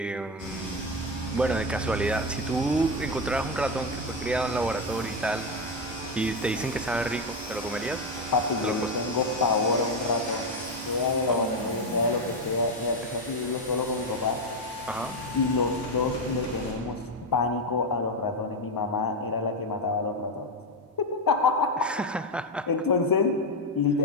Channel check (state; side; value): normal; both; correlation 0.10